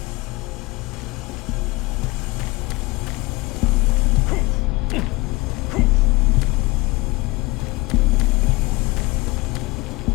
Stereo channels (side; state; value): right; quieter; 22.7 dB